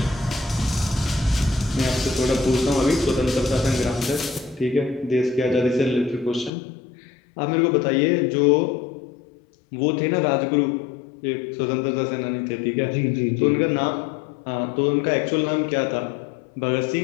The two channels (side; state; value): right; drops out; at 6.5 s